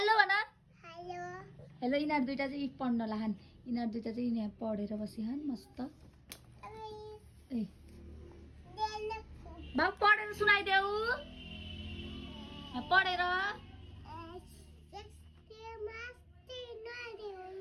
भन। Hello hello. यिनीहरू दुइटा चाहिँ पढ्न लाहन्। यिनीहरू दुइटा चाहिँ यहाँ पढेर बसिहान् मस्त। ए बाबु पढेर सुनाइदेऊ। पढेर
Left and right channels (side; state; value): both; identical; correlation 1.00